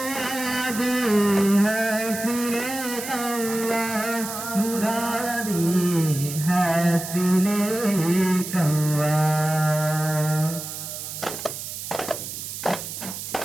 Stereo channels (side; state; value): right; noise; hiss, 8 dB below the sound